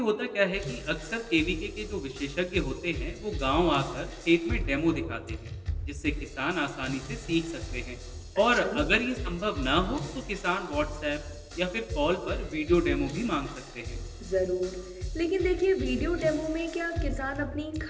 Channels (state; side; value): identical; both; correlation 1.00